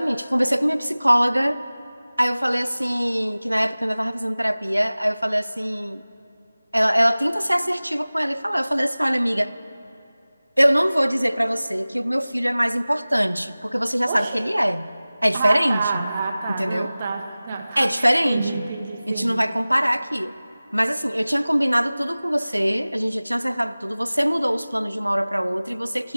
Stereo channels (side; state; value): both; inverted; correlation -0.98